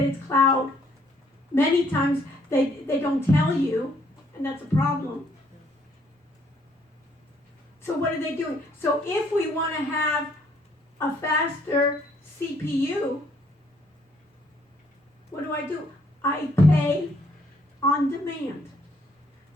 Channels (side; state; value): both; normal; correlation 0.66